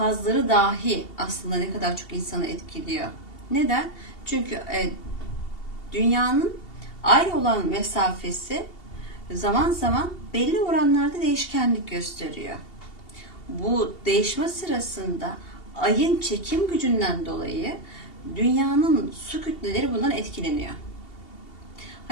dahi aslında ne kadar çok insanı etkiliyor. Neden? Çünkü dünyanın ay olan mesafesi zaman zaman belli oranlarda değişkenlik gösteriyor. Bu değişme sırasında ayın çekim gücünden dolayı dünyanın su kütleleri bundan etkileniyor.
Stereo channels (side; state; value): right; late; 2.7 ms